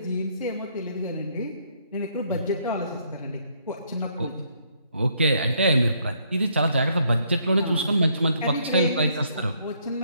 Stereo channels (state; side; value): inverted; both; correlation -0.70